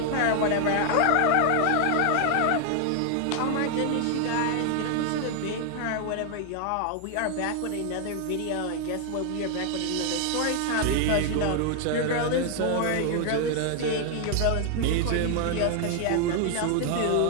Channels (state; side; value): different; both; correlation 0.00